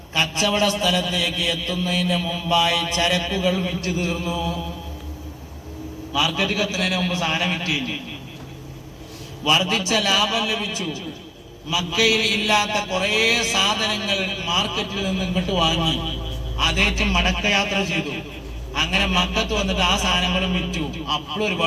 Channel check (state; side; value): identical; both; correlation 1.00